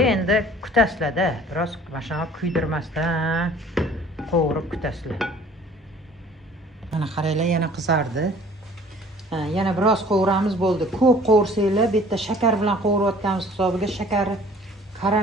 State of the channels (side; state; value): both; normal; correlation 0.51